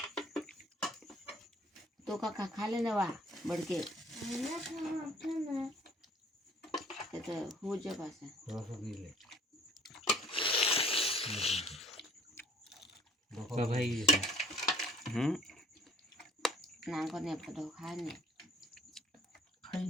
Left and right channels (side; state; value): both; normal; correlation 0.55